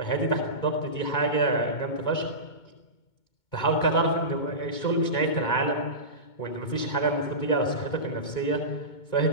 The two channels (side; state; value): right; late; 2.2 ms